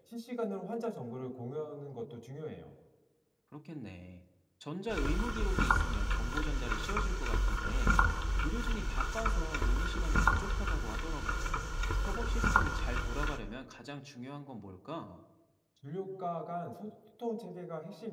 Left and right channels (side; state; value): both; identical; correlation 1.00